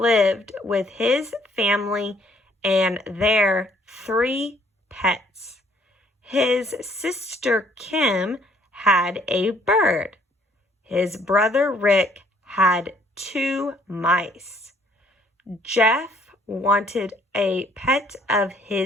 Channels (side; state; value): both; normal; correlation 0.63